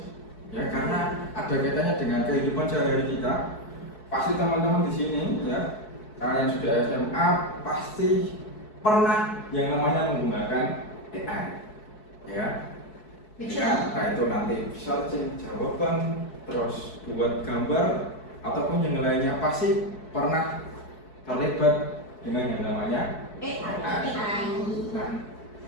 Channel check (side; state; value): right; late; 4.7 ms